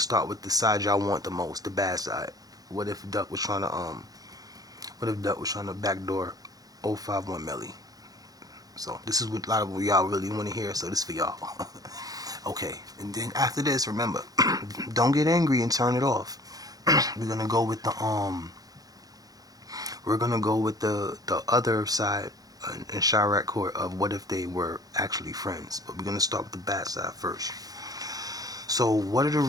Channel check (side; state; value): left; late; 0.18 ms